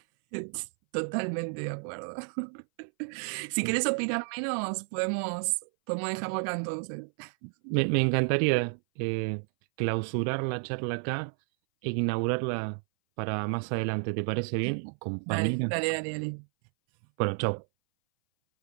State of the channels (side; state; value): left; silent; 57 dB below the other